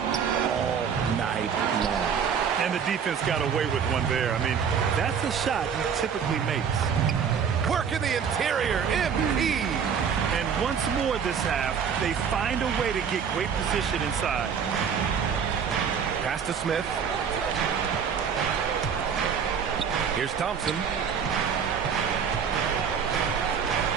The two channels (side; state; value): left; quieter; 7.1 dB